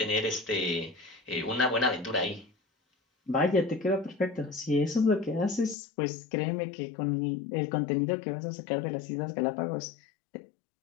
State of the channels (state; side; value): drops out; right; at 5.8 s